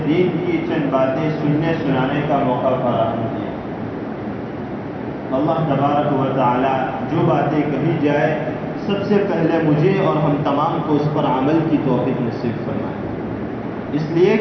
دین کی چند باتیں سننے سنانے کا موقع فراہم کیا۔ اللہ تبارک و تعالی جو باتیں کہی جائے سب سے پہلے مجھے اور ہم تمام کو اس پر عمل کی توفیق نصیب فرمائے، اس لیے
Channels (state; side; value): identical; both; correlation 1.00